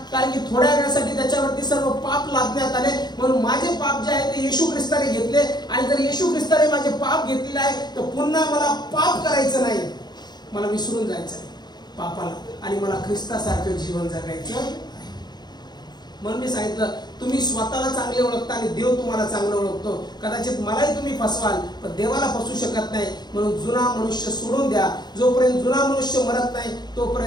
कारण की थोड्या वेळासाठी त्याच्यावरती सर्व पाप लादण्यात आले, म्हणून माझे पाप जे आहे ते येशू ख्रिस्ताने घेतले. आणि जर येशू ख्रिस्ताने माझे पाप घेतलेले आहे तर पुन्हा मला पाप करायचं नाही, मला विसरून जायचं आहे पापाला आणि मला ख्रिस्तासारखं जीवन जगायचं. म्हणून मी सांगितलं तुम्ही स्वतःला चांगले ओळखता आणि देव तुम्हाला चांगलं ओळखतो. कदाचित मलाही तुम्ही फसवाल पण देवाला फसवू शकत नाही. म्हणून जुना मनुष्य सोडून द्या. जोपर्यंत जुना मनुष्य मरत नाही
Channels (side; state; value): right; late; 0.20 ms